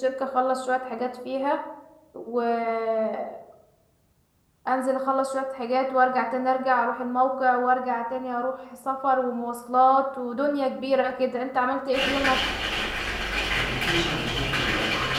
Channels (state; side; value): identical; both; correlation 1.00